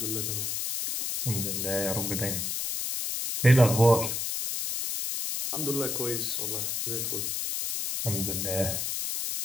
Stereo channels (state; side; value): noise; left; hiss, 2 dB below the sound